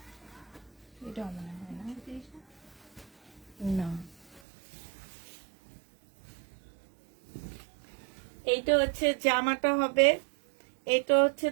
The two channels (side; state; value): left; drops out; at 4.4 s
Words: এটা মনে হয় না। না, এইটা হচ্ছে জামাটা হবে, এটা হচ্ছে